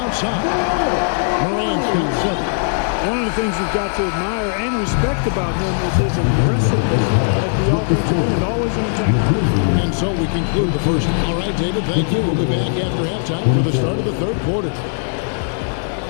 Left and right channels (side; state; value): right; silent; 67 dB below the other